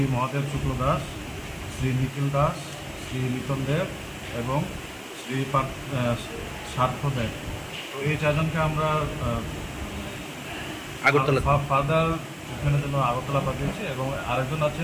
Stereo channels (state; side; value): identical; both; correlation 1.00